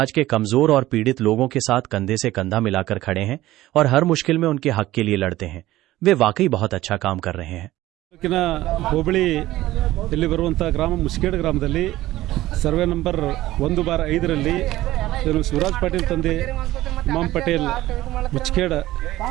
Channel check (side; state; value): left; quieter; 16.0 dB